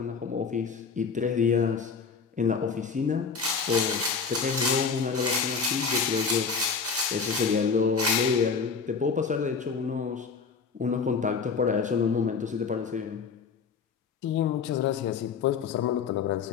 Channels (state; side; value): quieter; right; 5.5 dB